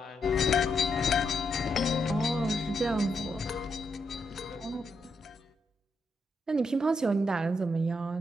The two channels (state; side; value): normal; both; correlation 0.81